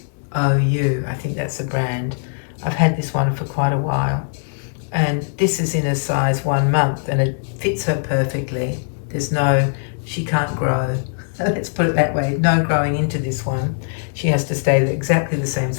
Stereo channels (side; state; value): right; silent; digital silence